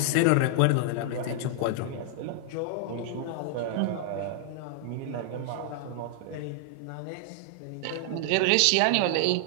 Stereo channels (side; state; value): both; different; correlation 0.00